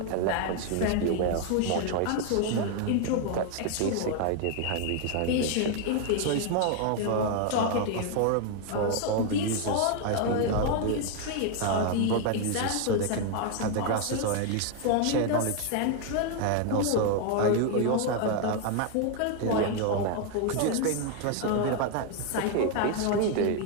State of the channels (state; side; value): different; both; correlation 0.01